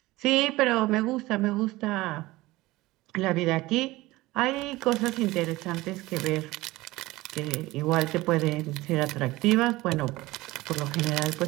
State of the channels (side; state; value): left; quieter; 19.3 dB